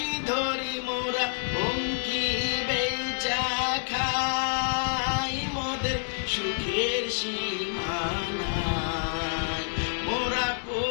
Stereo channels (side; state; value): right; silent; digital silence